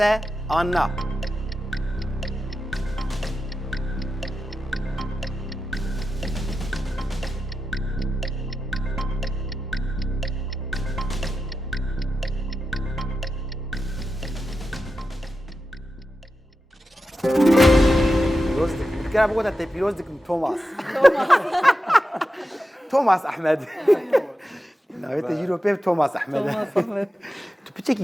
an na. كان بقول انت بيلوزك توماس توماس احمد ناويت يجيرو بيب توماس احمد تو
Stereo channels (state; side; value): normal; both; correlation 0.91